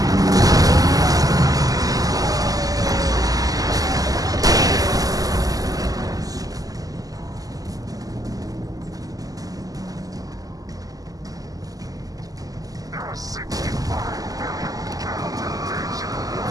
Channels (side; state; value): left; late; 0.17 ms